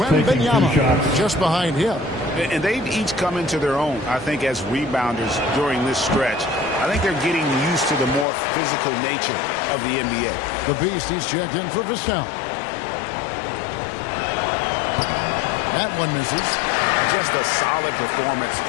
just behind him. And they've each come into their own, I think, as rebounders during this stretch. I think they're getting used to the more physical nature of the NBA. The Beast, he's checked in for Vassell. That one misses. Just a solid performance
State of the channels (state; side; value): drops out; right; at 8.2 s